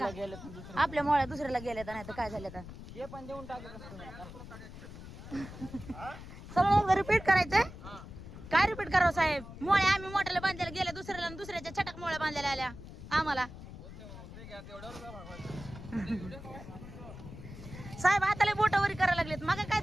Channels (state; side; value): noise; left; rumble, 13 dB below the sound